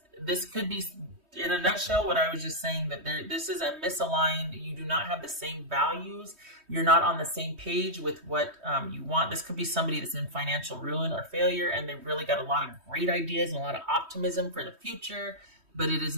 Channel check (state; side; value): late; left; 3.2 ms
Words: could be, in a nutshell, what I was just saying, that this is a misaligned. You do not have the same values. You're not on the same page with what you want. This could be somebody that's in financial ruin or failure, and they've really got a lot of great ideas and a lot of optimism for the future, but it is